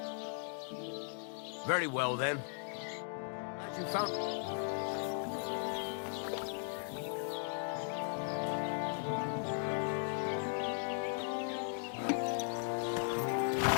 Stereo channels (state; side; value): silent; right; 53 dB below the other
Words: Very well, then. Glad you found...